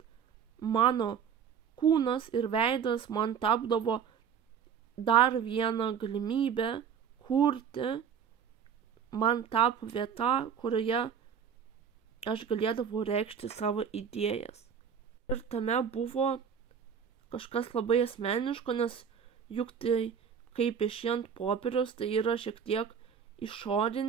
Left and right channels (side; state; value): left; quieter; 7.5 dB